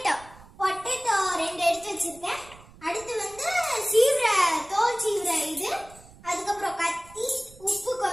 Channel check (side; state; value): right; noise; rumble, 22 dB below the sound